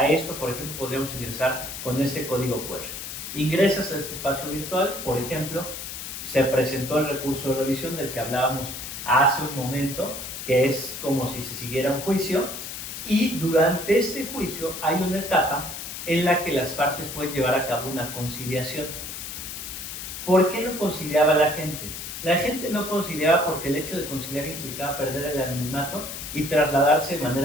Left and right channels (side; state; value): left; noise; hiss, 8 dB below the sound